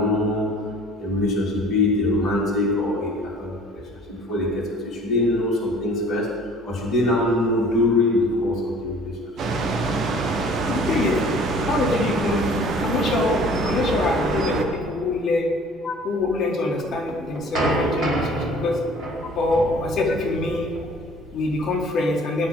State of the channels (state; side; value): normal; both; correlation 0.50